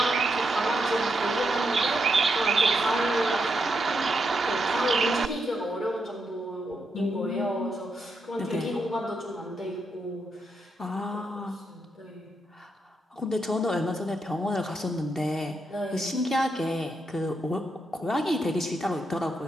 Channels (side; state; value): both; normal; correlation 0.82